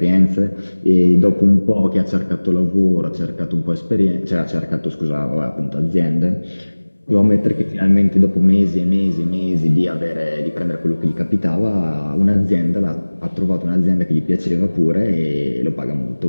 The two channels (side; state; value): both; inverted; correlation -1.00